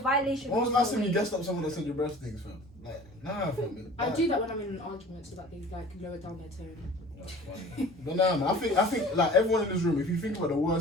When was the holds last time more you weight. guessed up someone that said your breast things, fam? Like, nah, fam. I do that when I'm in an argument so that they like lower down their tone. But nah, man, I think like everyone in this room, if you think about the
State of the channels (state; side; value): normal; both; correlation 0.45